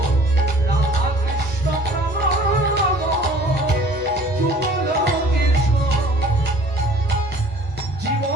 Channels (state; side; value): normal; both; correlation 0.51